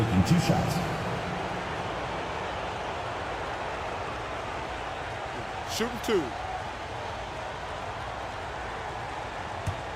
2 shots. Shooting 2.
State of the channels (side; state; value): both; identical; correlation 1.00